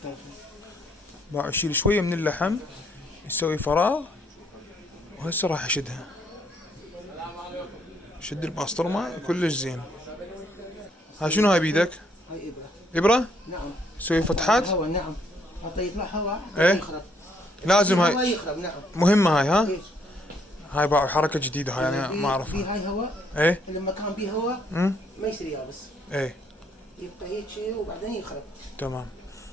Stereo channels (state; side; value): normal; both; correlation 0.69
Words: بقى اشيل شويه من اللحم يسوي فراغ. وهسه راح اشدها. شد البسطرمه كلش زين. ها شنو هاي بيدك؟ هاي ابره؟ نعم. تسوي فتحات؟ هواء نعم. حتى يطلع هواء ايه؟ يخرب. لازم هواء هاي يخرب نعم. مهمه هاي. ها. إيه؟ هاي بقى حركه جديده هاي انا ما اعرفها. في هاي هواء. ايه. لما كان بيه هواء ما يصير يابس. ايه. يبقى هيك وبعدين يخرب. تمام.